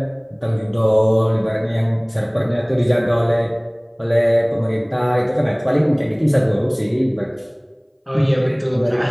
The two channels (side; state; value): both; identical; correlation 1.00